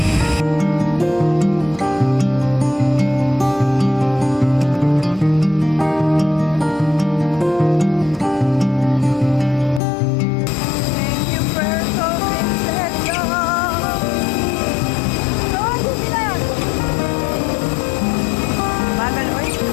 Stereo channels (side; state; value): right; drops out; at 9.8 s